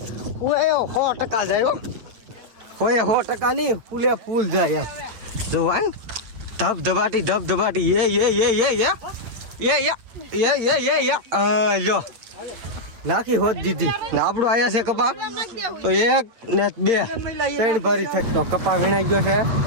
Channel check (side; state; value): left; late; 8.8 ms